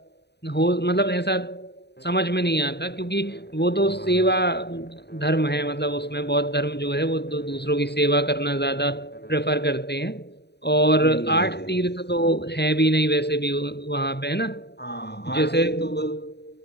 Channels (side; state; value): right; late; 0.49 ms